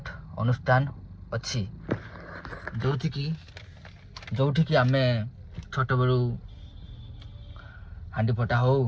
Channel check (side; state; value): both; identical; correlation 1.00